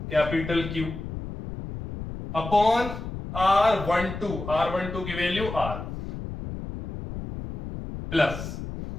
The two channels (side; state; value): left; noise; rumble, 8 dB below the sound